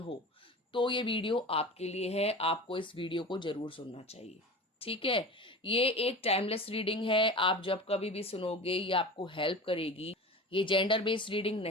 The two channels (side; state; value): both; normal; correlation 0.33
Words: हो, तो ये वीडियो आपके लिए है। आपको इस वीडियो को जरूर सुनना चाहिए। ठीक है। ये एक टाइमलेस रीडिंग है। आप जब कभी भी सुनोगे ये आपको हेल्प करेगी। ये जेंडर बेस्ड रीडिंग